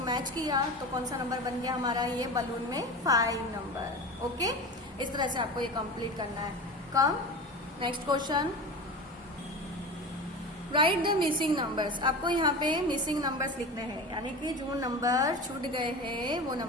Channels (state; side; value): normal; both; correlation 0.29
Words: मैच किया तो कौन सा नंबर बन गया हमारा, ये बलून में 5 नंबर। ओके, इस तरह से आपको ये कंप्लीट करना है। कम next question, right the missing numbers. आपको यहाँ पे मिसिंग नंबर्स लिखने हैं, यानी कि जो नंबर छूट गए हैं वो